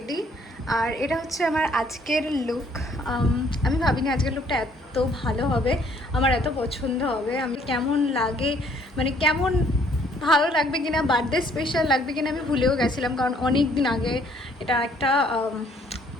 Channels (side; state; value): both; normal; correlation 0.63